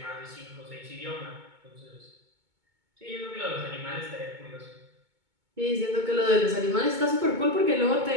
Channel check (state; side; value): late; left; 2.2 ms